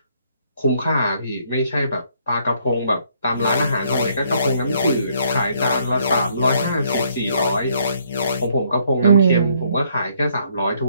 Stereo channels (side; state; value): both; inverted; correlation -0.68